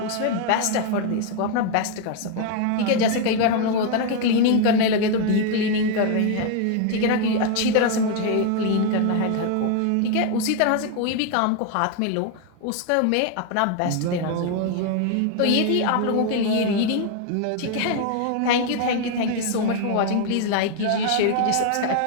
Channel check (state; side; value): different; both; correlation 0.01